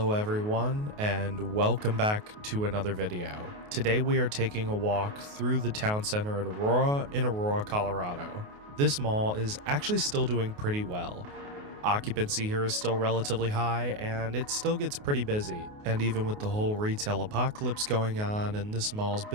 everyone, and welcome back to another video. Today we are taking a walk through the town center at Aurora in Aurora, Colorado. This mall is actually still doing pretty well. Occupancy here is still relatively high, and it still gets pretty busy. And even with the whole retail apocalypse going on and this mall's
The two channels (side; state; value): left; late; 28 ms